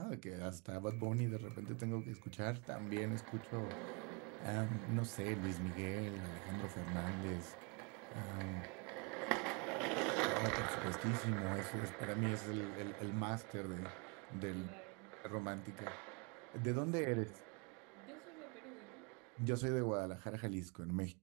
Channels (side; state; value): left; quieter; 33.1 dB